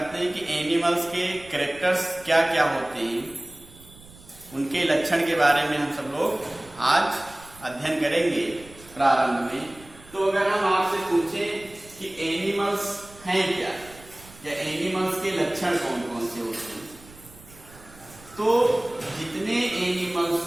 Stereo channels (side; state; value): right; noise; rumble, 22 dB below the sound